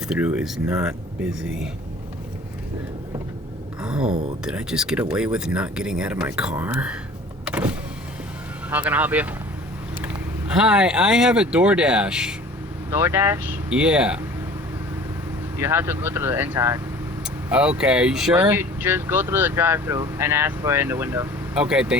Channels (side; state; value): both; normal; correlation 0.46